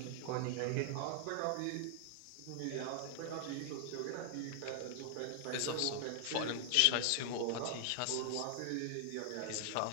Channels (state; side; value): different; both; correlation 0.00